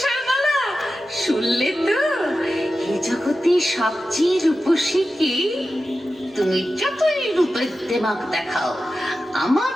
শুনলে তো? এই জগতে সবচেয়ে রূপসী কি? তুমি যতই রূপের দেমাক দেখাও, আমার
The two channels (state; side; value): normal; both; correlation 0.93